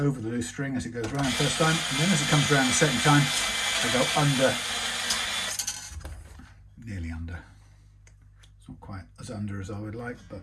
the loose string as it goes round first time, and then as it comes around the second time, I go under, nearly under. It's not quite as under as I would like, but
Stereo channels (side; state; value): both; identical; correlation 1.00